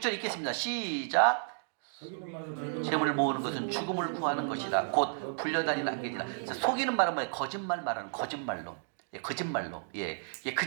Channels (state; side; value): silent; left; digital silence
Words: 읽겠습니다. 시작. 재물을 모으는 것은 죽음을 구하는 것이다. 곧 불려다니는 안개니라. 속이는 말은 뭐예요? 거짓말 말하는 거짓말로. 예, 거짓말로. 예,